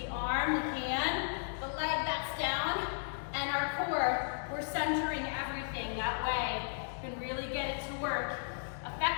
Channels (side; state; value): right; silent; digital silence